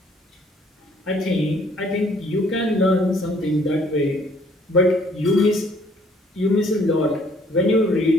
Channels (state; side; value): normal; both; correlation 0.61